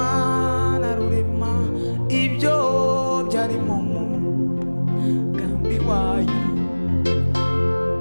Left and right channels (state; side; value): inverted; both; correlation -1.00